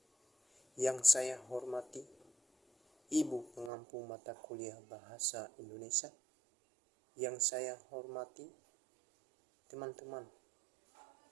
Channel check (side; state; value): left; drops out; at 3.7 s